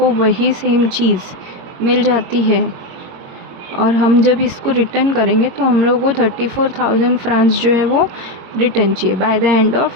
वही सेम चीज़ मिल जाती है और हम जब इसको रिटर्न करेंगे तो हम लोग को 34,000 फ्रांस जो है वो रिटर्न चाहिए by the end of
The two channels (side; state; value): left; late; 22 ms